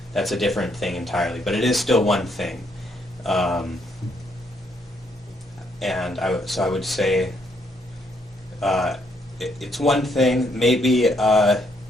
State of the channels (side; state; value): both; normal; correlation 0.72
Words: That's a different thing entirely, but it is still one thing. And I would say it's one thing. Maybe